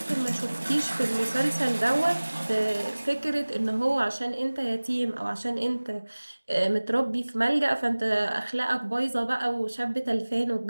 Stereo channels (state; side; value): inverted; both; correlation -1.00